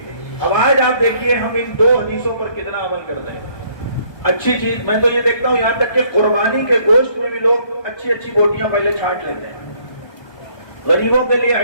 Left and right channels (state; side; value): late; right; 1.2 ms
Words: اب آج آپ دیکھیے ہم ان دو حدیثوں پر کتنا عمل کرتے ہیں۔ اچھی چیز میں تو یہ دیکھتا ہوں، یہاں تک کہ قربانی کے گوشت میں بھی لوگ اچھی اچھی بوٹیاں پہلے چھانٹ لیتے ہیں، غریبوں کے لیے